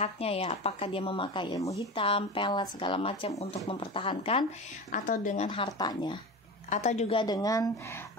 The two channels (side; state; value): both; normal; correlation 0.28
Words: ya, apakah dia memakai ilmu hitam, pelet, segala macam untuk mempertahankan, atau dengan hartanya, atau juga dengan